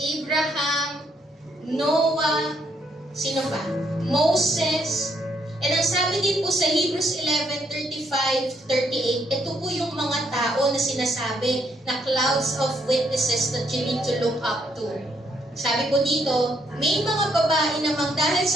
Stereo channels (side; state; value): both; normal; correlation 0.73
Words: Abraham, Noah, sino pa? Moses. And ang sabi din po sa Hebrews 11:35-38, ito po yung mga tao na sinasabi na clouds of witnesses that you need to look up to. Sabi po dito, may mga babae namang dahil